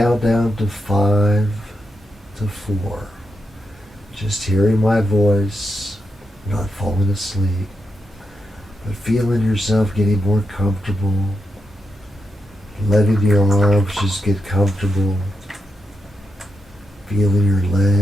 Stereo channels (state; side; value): normal; both; correlation 0.85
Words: down to 5 to 4, just hearing my voice, not falling asleep, but feeling yourself getting more comfortable, letting your arms just get comfortable, feeling your